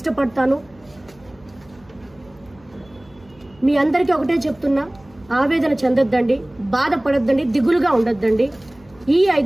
మీ అందరికీ ఒకటే చెప్తున్నా, ఆవేదన చెందొద్దండి, బాధపడొద్దండి, దిగులుగా ఉండొద్దండి. ఈ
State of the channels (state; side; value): noise; right; hum, 28 dB below the sound